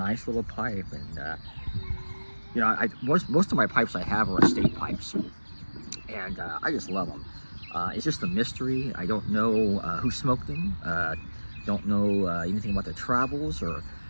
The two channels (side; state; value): both; inverted; correlation -1.00